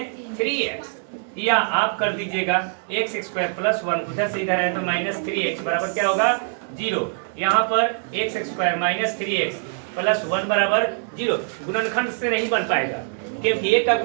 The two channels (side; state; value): left; silent; 63 dB below the other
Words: 3x, या आप कर दीजिएगा x² प्लस 1, उधर से इधर है तो -3x बराबर क्या होगा 0। यहाँ पर x² - 3x प्लस 1 बराबर 0। गुणनखंड से नहीं बन पाएगा क्योंकि 1 का